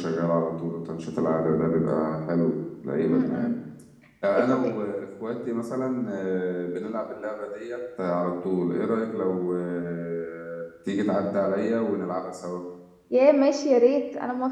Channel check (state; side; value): identical; both; correlation 1.00